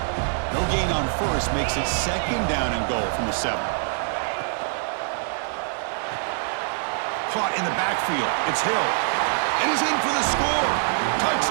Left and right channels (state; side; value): silent; left; digital silence